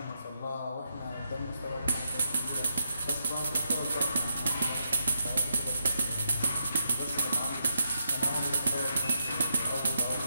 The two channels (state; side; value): inverted; both; correlation -0.81